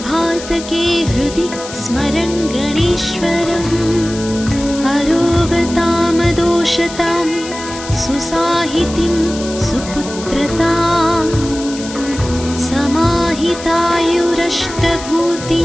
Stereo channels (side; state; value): left; noise; hiss, 12 dB below the sound